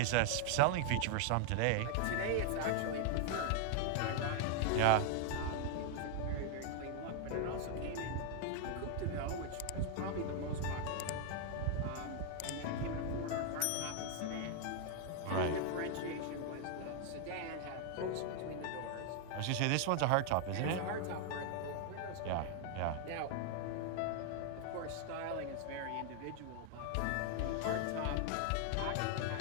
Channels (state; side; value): different; both; correlation 0.00